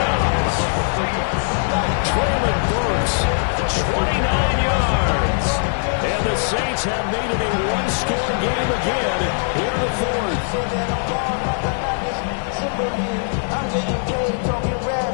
Traylon Burks, 29 yards. And the Saints have made it a one-score game again here in the fourth.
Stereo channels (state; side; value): silent; right; 65 dB below the other